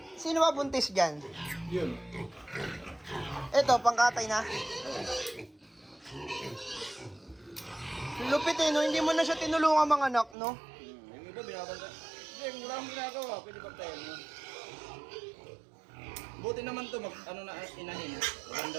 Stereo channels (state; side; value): drops out; left; at 10.4 s